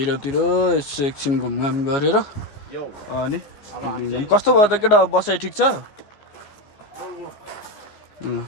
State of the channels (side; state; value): right; late; 14 ms